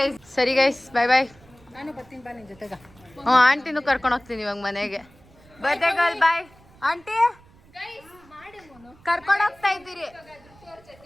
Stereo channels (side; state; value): right; noise; rumble, 26 dB below the sound